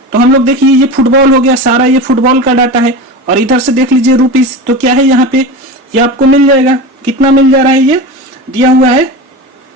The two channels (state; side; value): normal; both; correlation 0.27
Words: तो हम लोग देखिए ये फुटबॉल हो गया, सारा ये फुटबॉल का डाटा है, और इधर से देख लीजिए रुपीस, तो क्या है यहाँ पे, ये आपको मिल जाएगा, कितना मिल जा रहा है ये दिया हुआ है